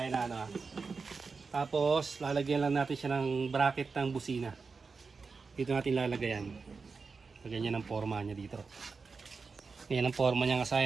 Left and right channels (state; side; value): quieter; left; 4.7 dB